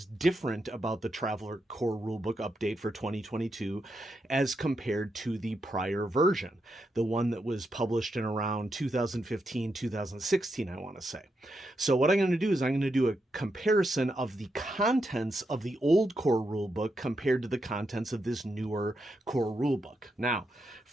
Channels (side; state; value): both; normal; correlation 0.83